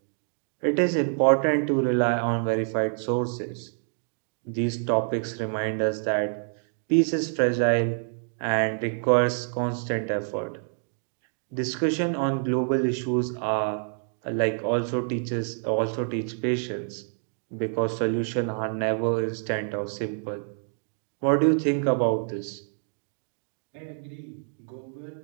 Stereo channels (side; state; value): left; silent; 60 dB below the other